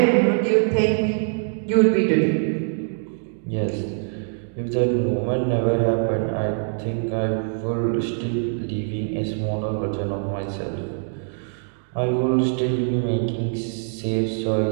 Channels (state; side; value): silent; left; digital silence